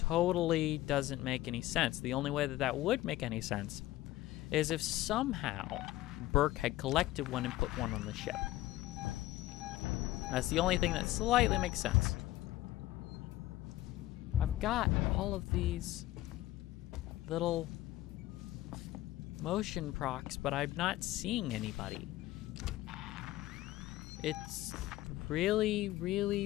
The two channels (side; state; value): right; quieter; 16.2 dB